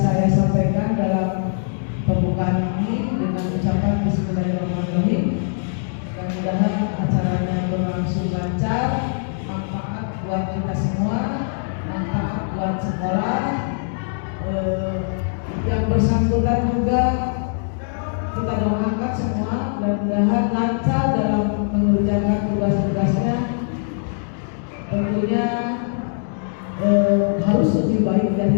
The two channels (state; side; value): silent; right; digital silence